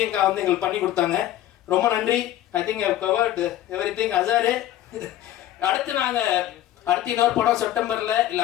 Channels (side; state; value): right; quieter; 13.2 dB